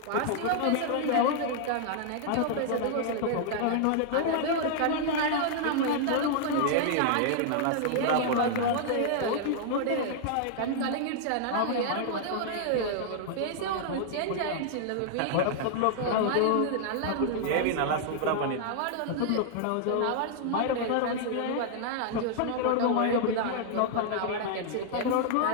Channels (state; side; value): different; both; correlation -0.01